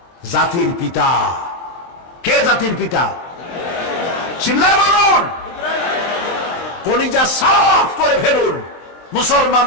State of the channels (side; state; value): right; late; 23 ms